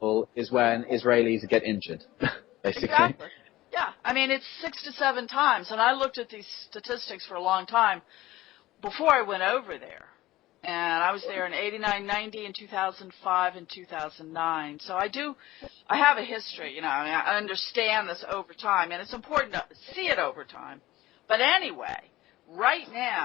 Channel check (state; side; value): quieter; right; 17.0 dB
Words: is when Israelis get injured, basically. Exactly. Yeah. I mean, it's 6 to 7 times, and I looked at these statistics for a long time before I went over there. And I was there in 89, 90, in 2005, and 2009. So I have a history, I understand this over time, and it's important to see it over time. But anyway, right